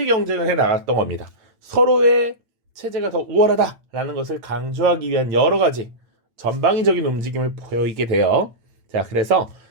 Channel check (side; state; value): left; late; 8.9 ms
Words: 경쟁을 해 나갔던 겁니다. 서로의 체제가 더 우월하다라는 것을 강조하기 위한 여러 가지 전방위적인 움직임을 보이게 돼요. 자, 그래서